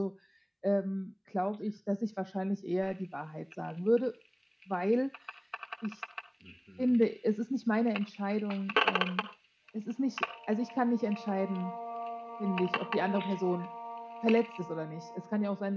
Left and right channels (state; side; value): identical; both; correlation 1.00